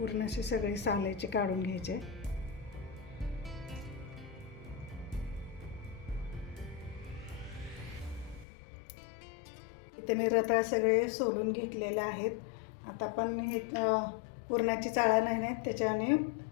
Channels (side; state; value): right; drops out; at 8.5 s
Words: अशी सगळी साल याची काढून घ्यायचे. इथे मी रताळ सगळे सोलून घेतलेले आहेत. आता आपण हे पुरणाची चाळा नाही, त्याच्याने